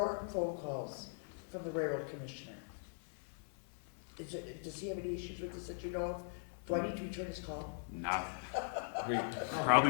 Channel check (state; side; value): silent; right; 51 dB below the other